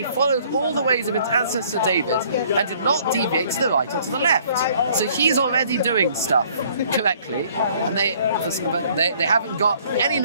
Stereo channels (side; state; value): both; inverted; correlation -0.59